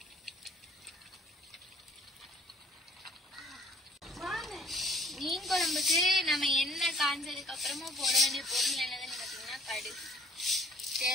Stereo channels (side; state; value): both; normal; correlation 0.56